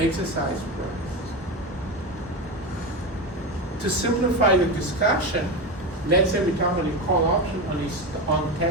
price. To simplify the discussion, let's say we talk about a call option on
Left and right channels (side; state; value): both; normal; correlation 0.18